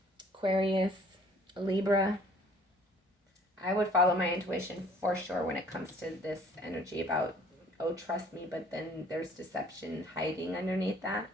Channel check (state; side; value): normal; both; correlation 0.55